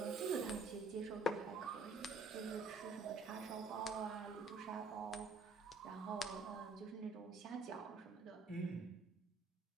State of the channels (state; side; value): quieter; left; 3.4 dB